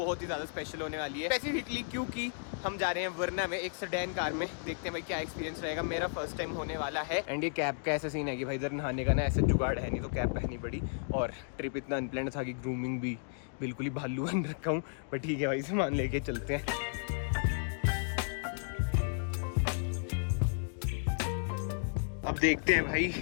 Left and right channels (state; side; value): silent; right; digital silence